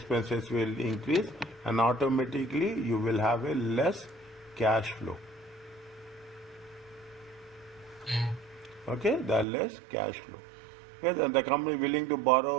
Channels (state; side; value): drops out; left; at 9.5 s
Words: will increase, and automatically you will have a less cash flow. Okay, the less cash flow. Yes, and the company willing to